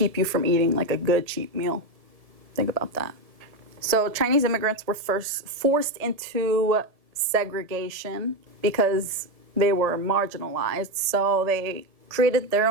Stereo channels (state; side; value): late; left; 1.7 ms